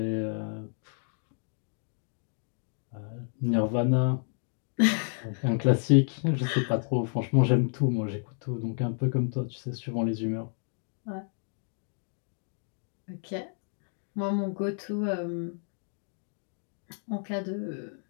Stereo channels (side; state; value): right; silent; 57 dB below the other